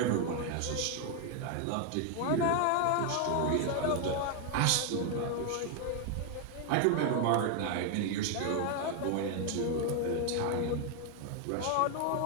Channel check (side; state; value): both; different; correlation 0.00